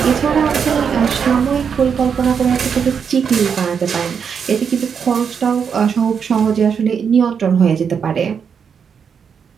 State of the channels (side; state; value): left; quieter; 6.8 dB